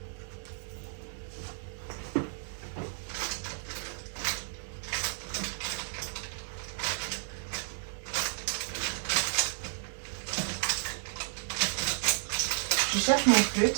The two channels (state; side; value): silent; left; digital silence